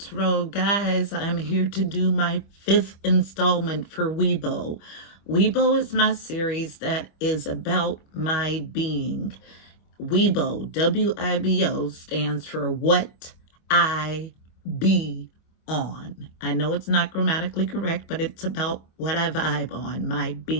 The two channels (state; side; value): late; right; 25 ms